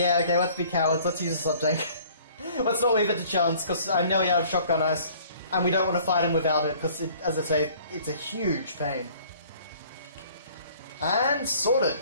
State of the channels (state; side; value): inverted; both; correlation -0.54